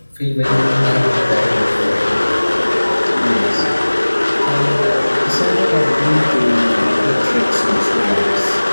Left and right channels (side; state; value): both; inverted; correlation -1.00